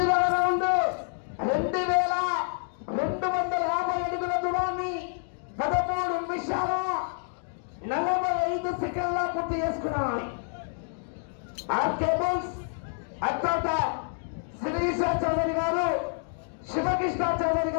రౌండ్ 2250 అడుగుల దూరాన్ని 13 నిమిషాల 45 సెకండ్ల పూర్తి చేసుకున్నాయి. ఆర్కేబుల్స్ అత్యంత శ్రీశ చౌదరి గారు శివకృష్ణ చౌదరి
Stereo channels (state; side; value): silent; right; 59 dB below the other